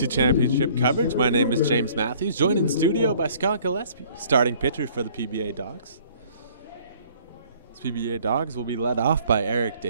Championship coverage. My name is James Matthews, joined in studio by Scott Gillespie, starting pitcher for the PBA Dogs. This PBA Dogs will be led off by Eric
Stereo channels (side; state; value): both; inverted; correlation -0.56